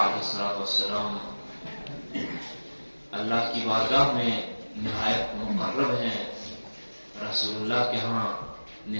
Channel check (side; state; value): both; inverted; correlation -1.00